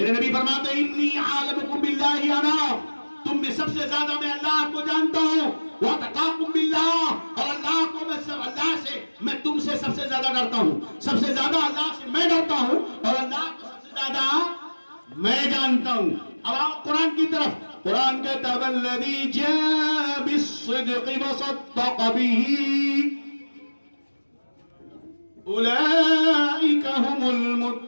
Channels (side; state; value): both; inverted; correlation -1.00